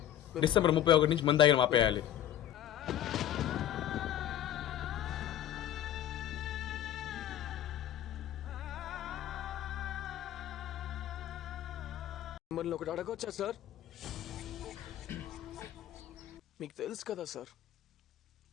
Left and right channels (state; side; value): quieter; right; 11.6 dB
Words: డిసెంబర్ 31 నుంచి మంది తాగిన ఆపేయాలి. మిమ్మల్ని ఒకటి అడగొచ్చా సార్? మీకు తెలుసు కదా సార్,